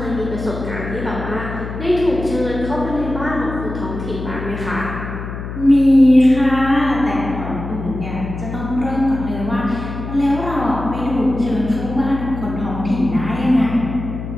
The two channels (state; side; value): noise; left; hum, 8 dB below the sound